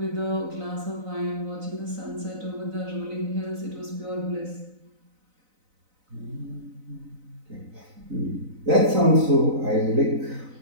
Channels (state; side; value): late; left; 4.0 ms